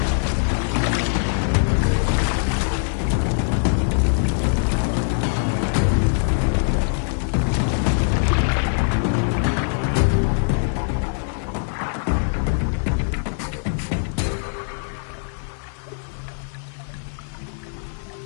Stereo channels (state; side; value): silent; right; 64 dB below the other